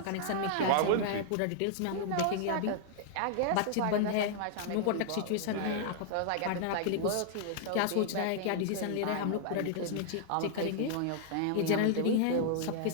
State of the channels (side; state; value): both; different; correlation -0.01